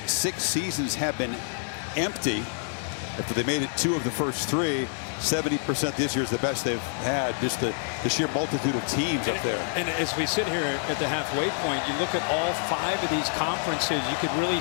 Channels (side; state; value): right; silent; digital silence